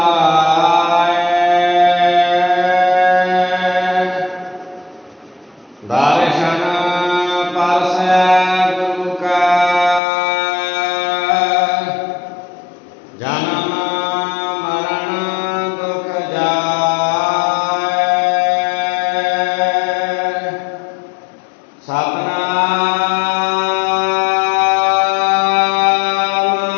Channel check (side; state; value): right; drops out; at 10.0 s